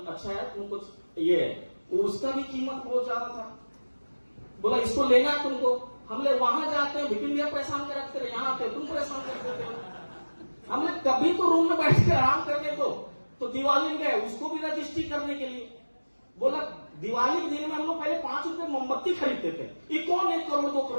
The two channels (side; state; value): both; inverted; correlation -1.00